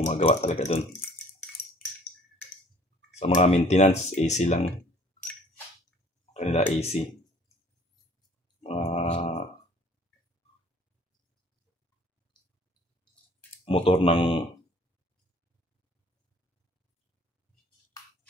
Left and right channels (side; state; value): both; normal; correlation 0.54